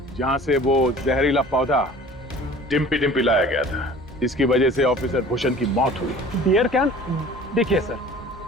जहां से वो जहरीला पौधा डिम्पी डिम्पी लाया गया था, जिसकी वजह से ऑफिसर भूषण की मौत हुई। Beer can? देखिए सर,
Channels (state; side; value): normal; both; correlation 0.45